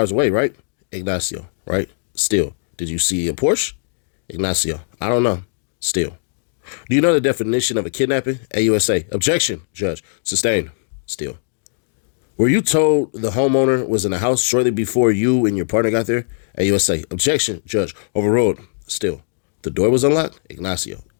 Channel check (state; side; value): silent; right; digital silence